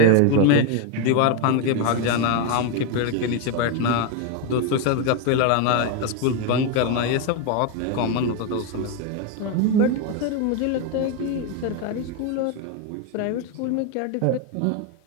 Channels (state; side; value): different; both; correlation 0.02